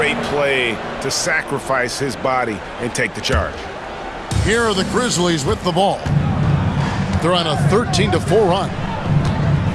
play to sacrifice his body and take the charge. Here are the Grizzlies with the ball. They're on a 13-4 run.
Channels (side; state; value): both; identical; correlation 1.00